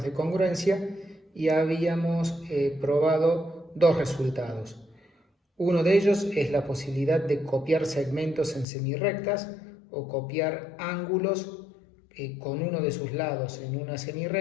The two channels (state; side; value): drops out; right; at 8.7 s